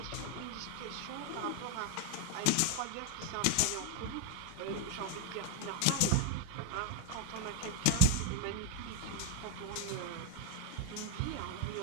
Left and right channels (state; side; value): different; both; correlation 0.00